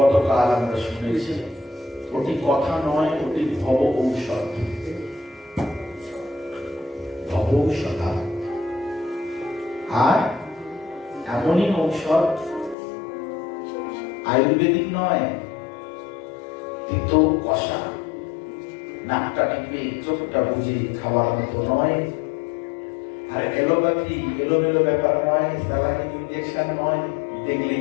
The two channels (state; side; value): drops out; right; at 12.8 s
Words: আমরা শুনেছি, ওটি কথা নয়, ওটি ভব ঔষধ। ভব ঔষধা, আর এমনই ঔষধ আয়ুর্বেদিক নয়, তিতো কষা, নাকটা টিপে চোখটা বুঝে খাওয়ার মতো নয়, আর এলোপ্যাথি এলোমেলো ব্যাপার নয়, স্যালাইন ইনজেকশন নয়, দেখলেই